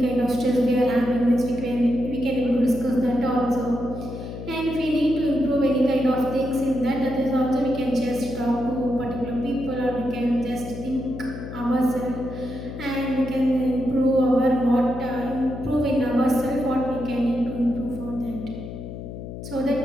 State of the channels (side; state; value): left; noise; hum, 10 dB below the sound